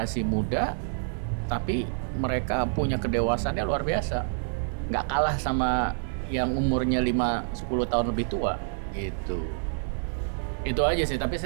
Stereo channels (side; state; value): left; silent; 60 dB below the other